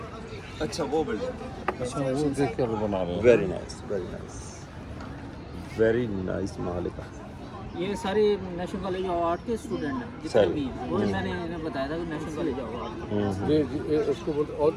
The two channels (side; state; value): both; identical; correlation 1.00